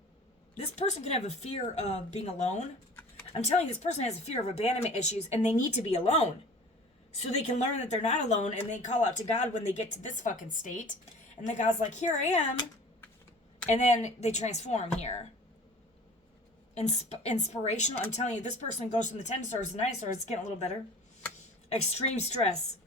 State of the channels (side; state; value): both; normal; correlation 0.44